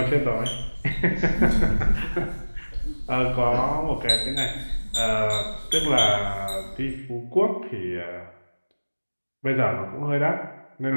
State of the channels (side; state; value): both; inverted; correlation -1.00